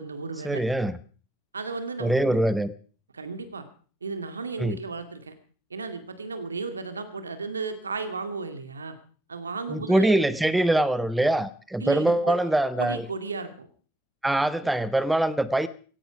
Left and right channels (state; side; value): normal; both; correlation 0.77